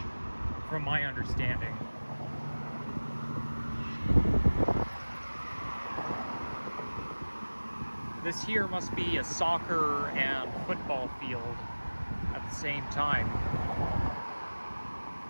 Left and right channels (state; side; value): inverted; both; correlation -1.00